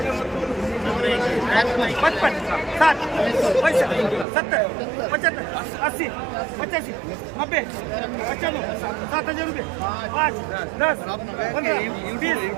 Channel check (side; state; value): left; drops out; at 4.2 s